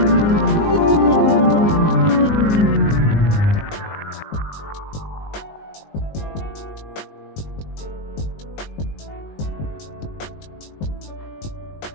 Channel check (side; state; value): right; late; 19 ms